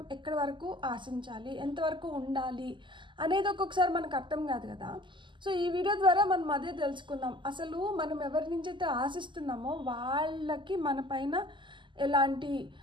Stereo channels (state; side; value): late; left; 0.24 ms